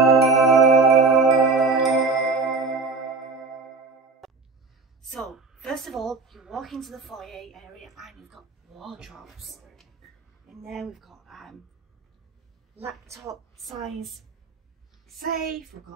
So first of all, you walk into the foyer area and you've got wardrobes. In there we've got laptop size safe, we've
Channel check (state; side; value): quieter; left; 4.0 dB